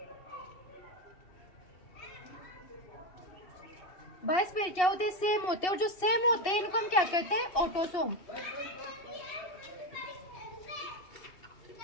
22 पेड़ क्या होते हैं? सेम होते हैं। और जो सेम होते हैं इनको हम क्या कहते हैं? ऑटोसोम।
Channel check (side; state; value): right; late; 2.7 ms